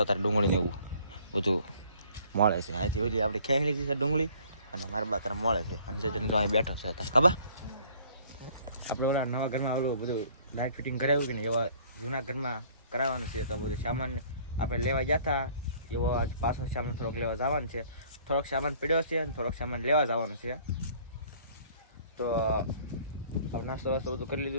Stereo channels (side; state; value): both; inverted; correlation -0.56